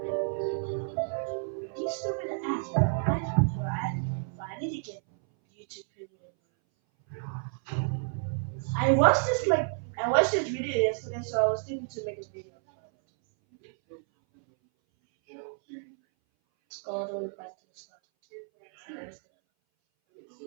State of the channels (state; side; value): silent; left; 58 dB below the other